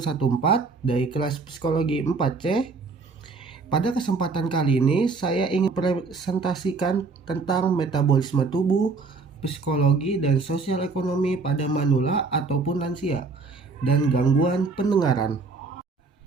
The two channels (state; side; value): quieter; left; 4.2 dB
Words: dari kelas psikologi 4C. Pada kesempatan kali ini saya ingin presentasikan tentang metabolisme tubuh, psikologi dan sosial ekonomi pada manula ataupun lansia dan gangguan pendengaran.